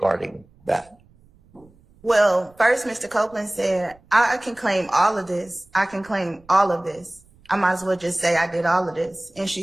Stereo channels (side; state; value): right; noise; rumble, 29 dB below the sound